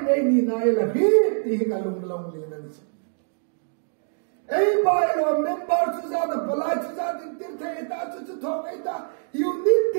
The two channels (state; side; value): silent; left; digital silence